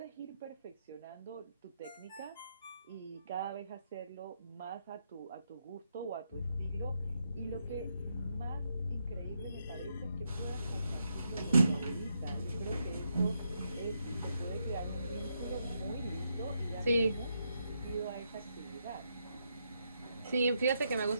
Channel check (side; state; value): both; inverted; correlation -0.80